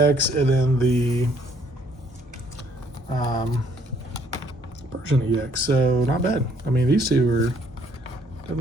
and then the Persian EX. So not bad. I mean, these two are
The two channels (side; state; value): both; normal; correlation 0.64